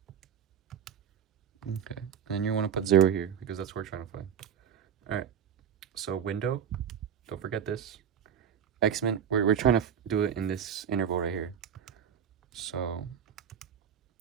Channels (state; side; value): quieter; left; 8.3 dB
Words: Okay. And you want to put 0 here because that's what we're trying to find. All right. So window, don't forget this. X-Men, we're trying to do it in this interval right here. So,